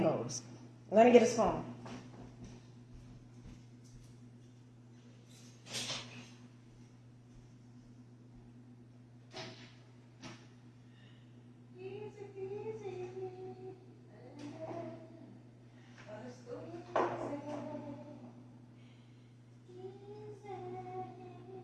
I'm going to get a spoon.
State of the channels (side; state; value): both; identical; correlation 1.00